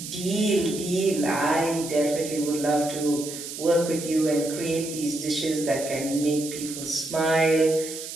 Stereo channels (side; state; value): right; noise; hiss, 9 dB below the sound